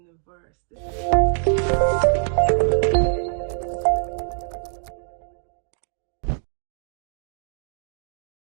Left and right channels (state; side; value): silent; left; digital silence